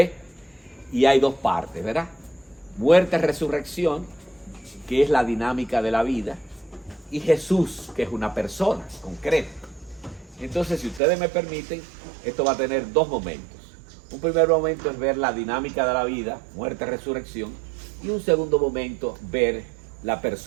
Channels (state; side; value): drops out; left; at 11.0 s